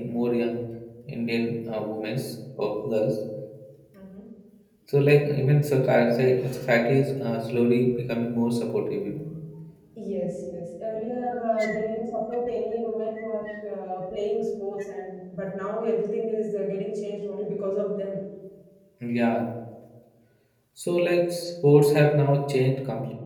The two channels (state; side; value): identical; both; correlation 1.00